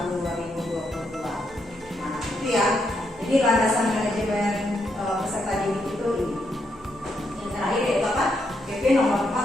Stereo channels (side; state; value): both; normal; correlation 0.79